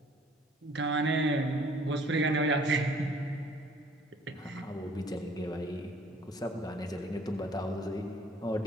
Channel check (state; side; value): normal; both; correlation 0.56